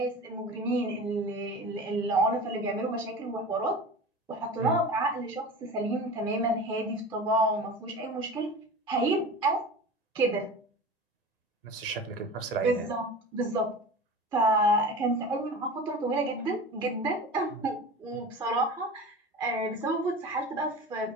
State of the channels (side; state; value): both; normal; correlation 0.34